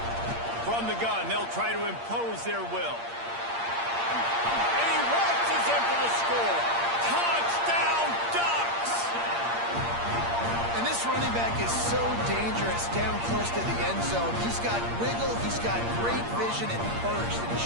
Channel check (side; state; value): left; late; 8.6 ms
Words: From the gun, they'll try to impose their will. In for the score. Touchdown, Ducks! And this running back is so dangerous down close to the end zone. He's got wiggle, he's got great vision and burst, and he